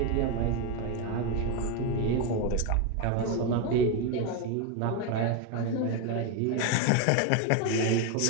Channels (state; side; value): different; both; correlation 0.02